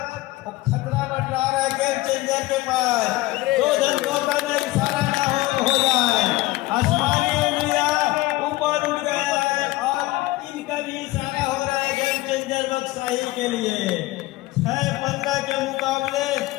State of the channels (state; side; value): quieter; right; 19.0 dB